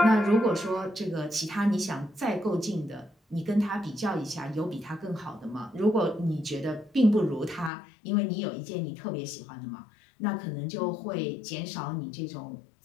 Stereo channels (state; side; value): drops out; right; at 7.7 s